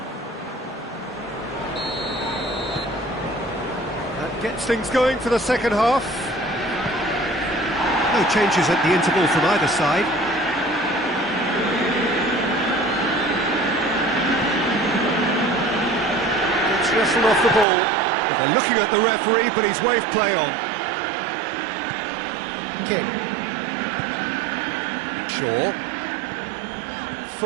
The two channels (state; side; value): drops out; left; at 17.7 s